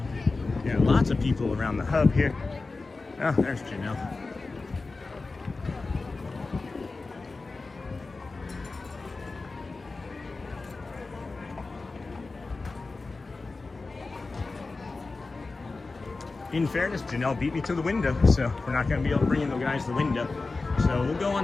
Yeah, lots of people around the hub here. Oh, there's Janelle. In fairness, Janelle beat me to the window, so we're not going to be able to bring in the guys to the window. So we'll go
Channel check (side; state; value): right; quieter; 3.7 dB